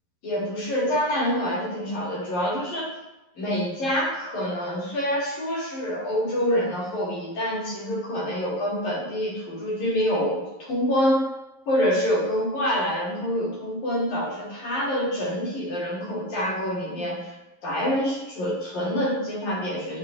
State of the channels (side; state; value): right; late; 11 ms